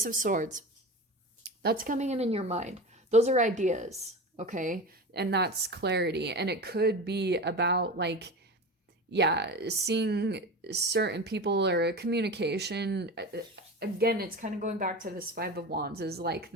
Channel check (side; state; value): both; normal; correlation 0.28